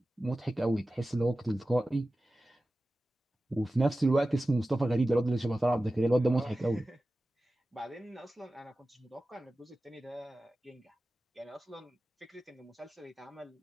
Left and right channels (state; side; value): normal; both; correlation 0.95